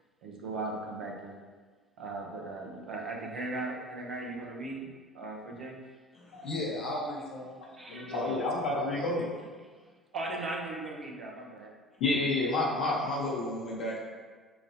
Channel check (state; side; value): normal; both; correlation 0.38